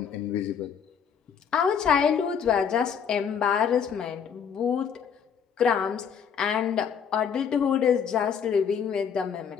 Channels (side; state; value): right; quieter; 7.3 dB